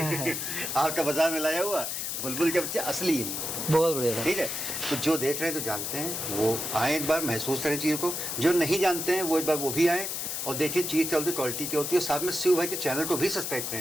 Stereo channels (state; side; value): noise; left; hiss, 3 dB below the sound